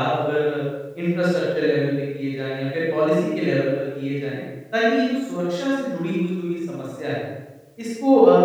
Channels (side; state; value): both; identical; correlation 1.00